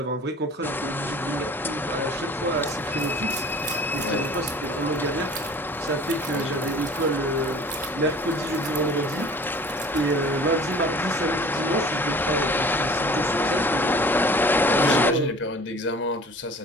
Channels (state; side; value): normal; both; correlation 0.46